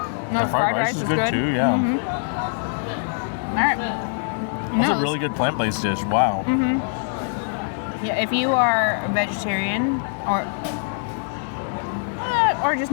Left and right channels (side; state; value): right; silent; digital silence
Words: No, The fried rice is good too, yeah. All right. That's a really good plant-based dish, wow. Yeah, if you are a vegetarian or just